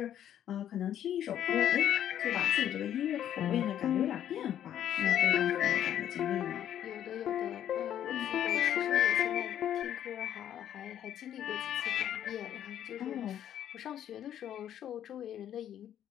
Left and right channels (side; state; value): right; quieter; 10.6 dB